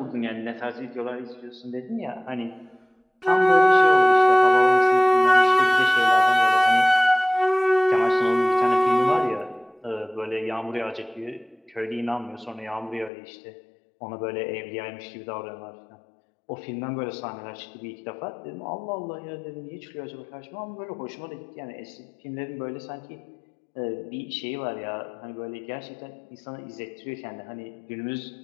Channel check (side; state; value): right; drops out; at 13.1 s